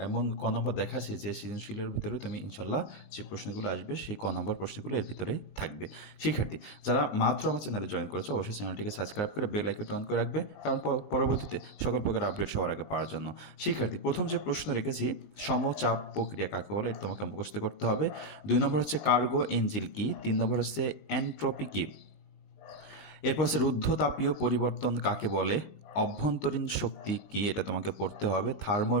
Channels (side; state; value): right; late; 19 ms